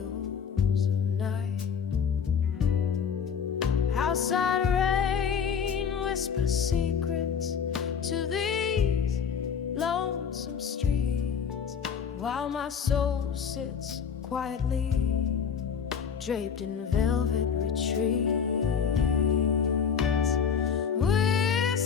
of night. Outside rain whispers secrets to these lonesome streets, while my soul sits quietly draped in velvet retreats.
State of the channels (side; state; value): right; quieter; 7.0 dB